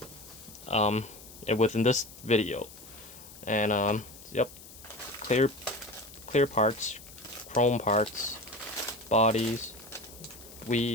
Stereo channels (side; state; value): left; noise; hiss, 18 dB below the sound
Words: within this video. And yep, clear parts, chrome parts, bodies,